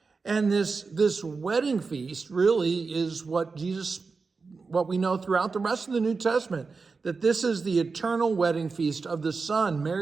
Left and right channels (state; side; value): quieter; left; 4.5 dB